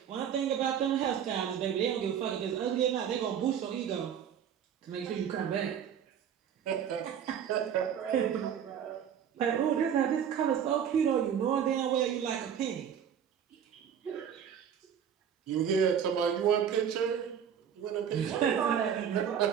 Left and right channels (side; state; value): left; quieter; 8.5 dB